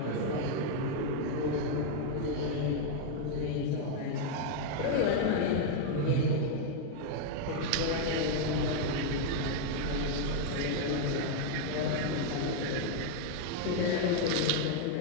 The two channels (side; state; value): both; different; correlation 0.00